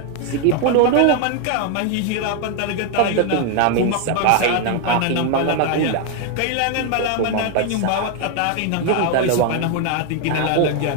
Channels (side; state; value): both; different; correlation 0.00